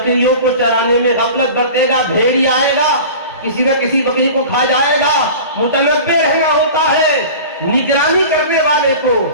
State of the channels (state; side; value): inverted; both; correlation -0.37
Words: کو چرانے میں غفلت برتے گا، بھیڑی آئے گا کسی نہ کسی بکری کو کھا جائے گا، متنبع رہنا ہوتا ہے۔ نگرانی کرنے والے کو